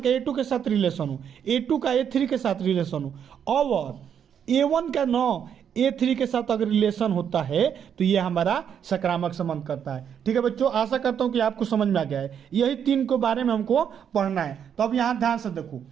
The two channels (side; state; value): left; quieter; 8.3 dB